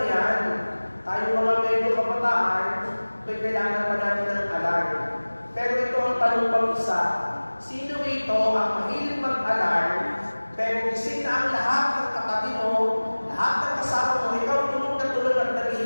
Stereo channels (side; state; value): both; inverted; correlation -1.00